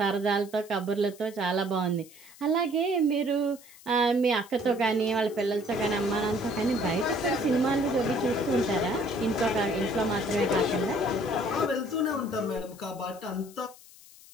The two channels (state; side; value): noise; left; hiss, 22 dB below the sound